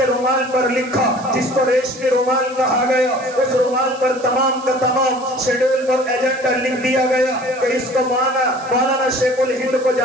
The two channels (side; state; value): right; noise; hiss, 21 dB below the sound